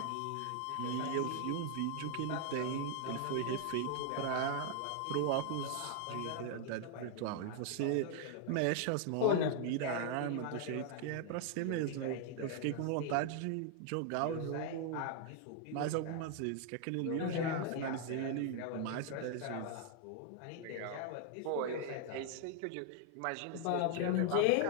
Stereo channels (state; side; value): different; both; correlation 0.00